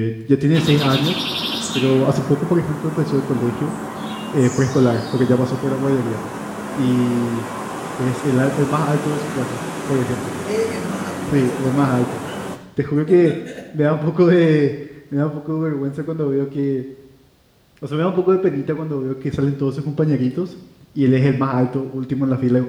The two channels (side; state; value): both; identical; correlation 1.00